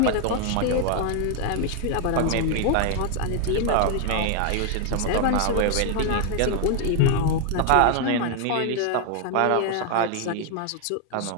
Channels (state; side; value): different; both; correlation 0.00